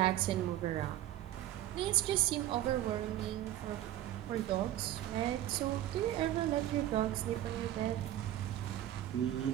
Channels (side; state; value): left; quieter; 13.2 dB